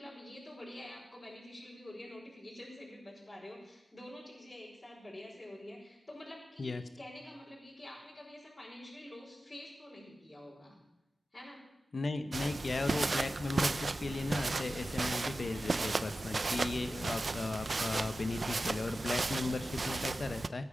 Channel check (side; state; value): both; normal; correlation 0.93